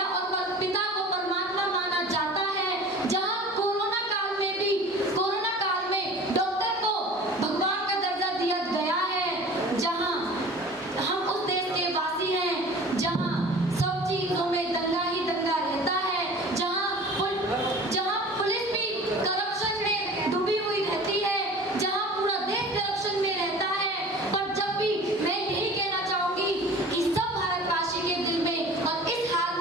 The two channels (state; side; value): normal; both; correlation 0.42